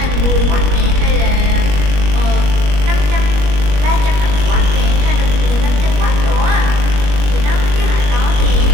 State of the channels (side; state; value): left; late; 21 ms